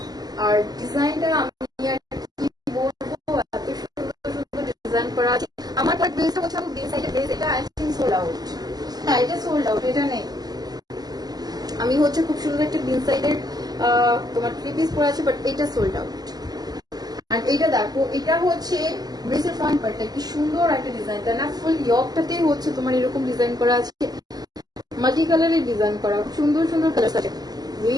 আর ডিজাইনটা আমি আর কি বলবো, এত সুন্দর সুন্দর ডিজাইন করা আছে। আমার ড্রেসটা হচ্ছে আমি ড্রেস এটা আই থিংক সোল্ড আউট। হ্যাঁ এটা সোল্ড আউট, এটা নেই। আমি হচ্ছে খুব সুন্দর একটা গ্রিন সাইডের তোমার 3 পিস পরে আছে, বাট এটা সোল্ড আউট। আর এটা দেখো, এটা হচ্ছে ড্রেসের ফ্রন্ট পার্টটা, কি সুন্দর একটা ডিজাইন, তাই না? ফুল ইয়কটাতেই হচ্ছে তোমার এরকম ডিজাইন করা আছে, মাল্টি কালারের ডিজাইন করা, সুন্দর সুন্দর কালার আছে।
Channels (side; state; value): left; late; 0.19 ms